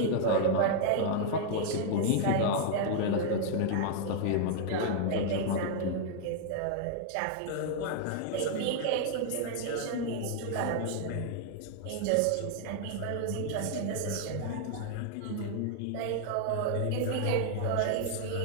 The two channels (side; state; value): both; different; correlation 0.00